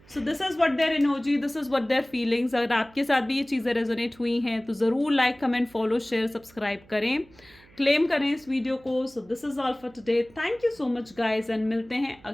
So this is what their energy, this is what their feelings. अगर आपके साथ भी ये चीज़ें रेजोनेट हुई हैं तो ज़रूर like, comment, follow, share, subscribe करें, क्लेम करें इस वीडियो को। So this is all for today, thank you so much guys, and मिलते हैं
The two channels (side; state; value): right; noise; hum, 27 dB below the sound